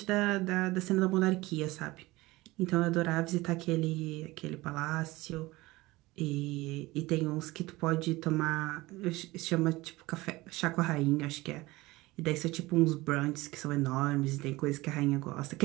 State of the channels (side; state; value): left; quieter; 20.3 dB